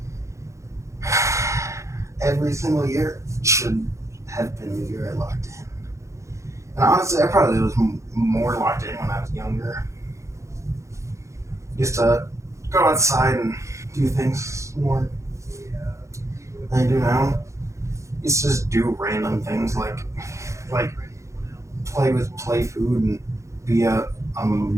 Every single year should have been the year I locked in. And honestly, I probably was more locked in when I was younger. Used to go outside and do things more than I do now. Used to just do random things like play with play food and be a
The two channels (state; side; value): late; left; 0.15 ms